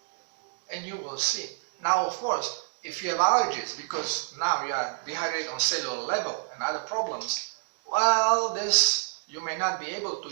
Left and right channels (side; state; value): left; silent; digital silence